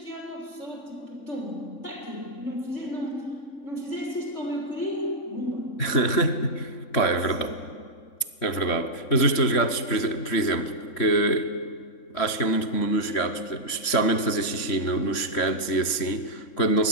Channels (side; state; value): right; late; 3.6 ms